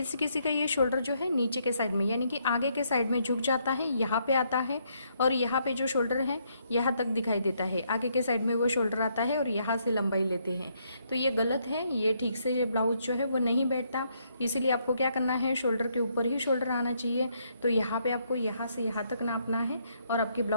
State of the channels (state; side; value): inverted; both; correlation -0.73